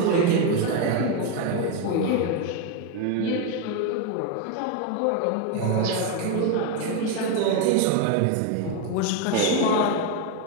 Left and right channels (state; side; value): different; both; correlation 0.02